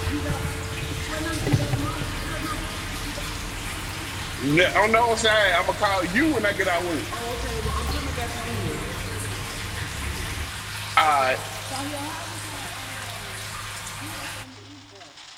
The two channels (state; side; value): identical; both; correlation 1.00